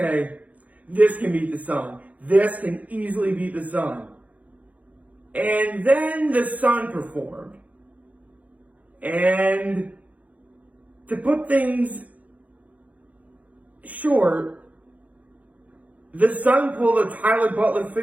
this can beat the sun. This can easily beat the sun. And then the sun performed. And to put things short, the sun pulled a Tyler Butler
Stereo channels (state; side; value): late; left; 0.073 ms